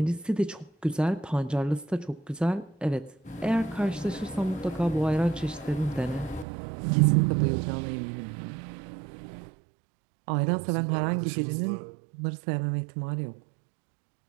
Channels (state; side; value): drops out; left; at 6.5 s